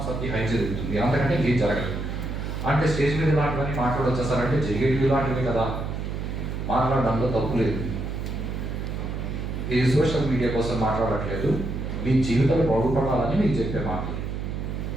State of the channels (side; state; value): right; noise; hum, 4 dB below the sound